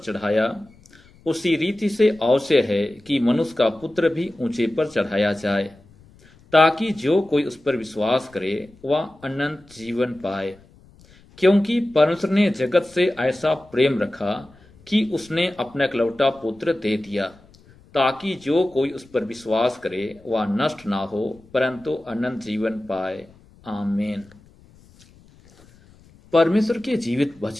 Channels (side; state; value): left; noise; rumble, 27 dB below the sound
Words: उसी रीति से आवश्यक है कि मनुष्य का पुत्र भी ऊंचे पर चढ़ाया जाए, ताकि जो कोई उस पर विश्वास करे वह अनंत जीवन पाए। क्योंकि परमेश्वर ने जगत से ऐसा प्रेम रखा कि उसने अपना इकलौता पुत्र दे दिया, ताकि जो कोई उस पर विश्वास करे वह नष्ट ना हो, परंतु अनंत जीवन पाए। आमीन। परमेश्वर के जीवित